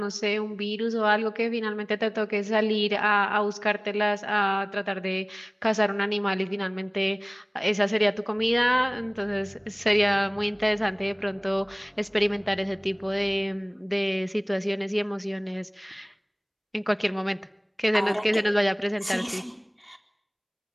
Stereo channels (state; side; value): identical; both; correlation 1.00